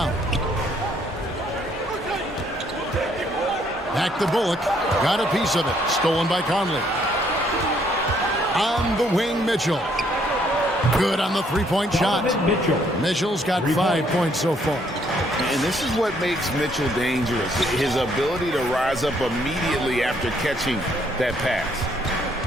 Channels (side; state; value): both; normal; correlation 0.68